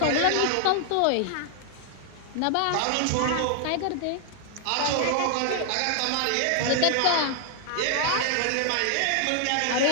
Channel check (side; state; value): both; different; correlation 0.00